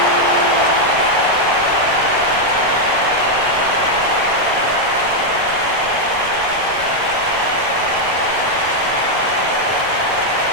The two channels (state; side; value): late; left; 9.9 ms